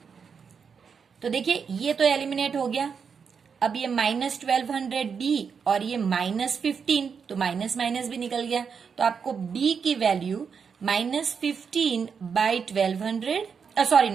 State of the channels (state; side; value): quieter; left; 6.3 dB